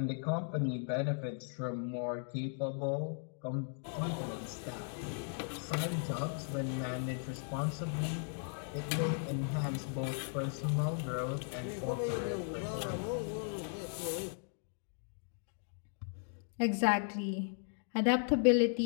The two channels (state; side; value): silent; right; 53 dB below the other